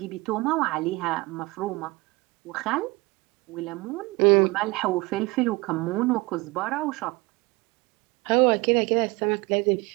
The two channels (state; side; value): quieter; left; 23.6 dB